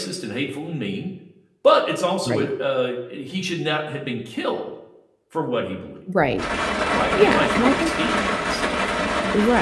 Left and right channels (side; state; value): both; identical; correlation 1.00